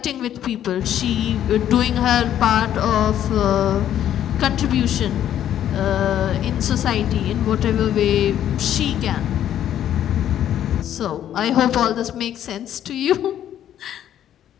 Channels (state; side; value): quieter; right; 10.9 dB